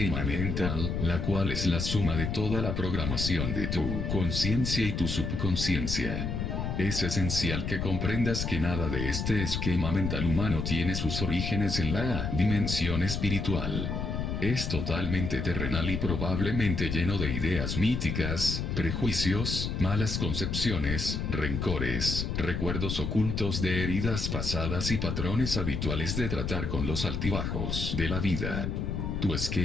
mental, la cual es la suma de toda la programación de tu conciencia y tu subconsciencia. Es esencial que comprendas que nada de este esquema mental humano tiene sus orígenes en la dimensión espiritual. Es totalmente terrenal y probablemente lleno de ideas míticas, prejuicios, malas concepciones, rencores, recuerdos ocultos de heridas pasadas y patrones habituales de tratar con los altibajos de la vida. Tu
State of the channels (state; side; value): noise; left; rumble, 2 dB below the sound